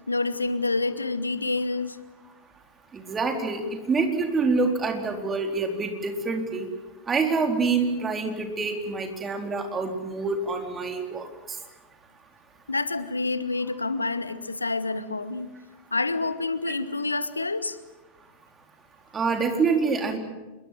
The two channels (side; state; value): both; normal; correlation -0.01